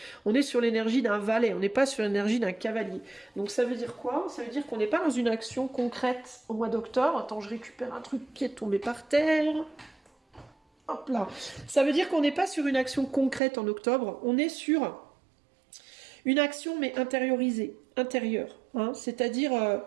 On est sur l'énergie d'un valet, on n'est pas sur l'énergie d'un cavalier. Donc ça veut dire quoi? Ça veut dire qu'on n'est pas dans une action concrète au mois d'octobre. Attends, je récupère un truc qui est tombé par terre. Hop là. Ça veut dire qu'on n'est pas sur une action concrète en octobre, on est sur une action mais intériorisée, intérieure. Hein. C'est-à-dire,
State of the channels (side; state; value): left; drops out; at 13.4 s